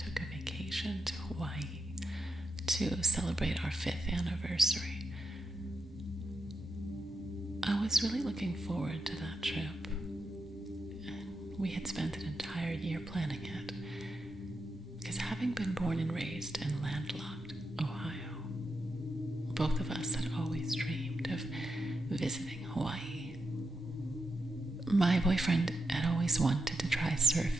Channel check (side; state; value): both; normal; correlation 0.85